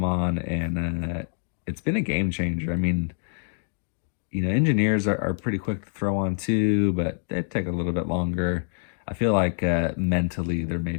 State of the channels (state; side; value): silent; right; digital silence